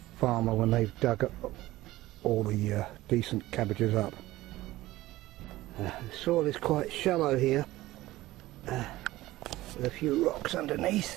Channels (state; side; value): quieter; left; 17.2 dB